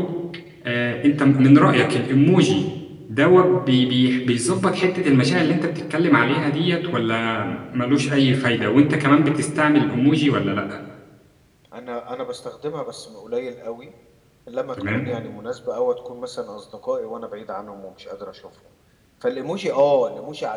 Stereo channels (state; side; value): identical; both; correlation 1.00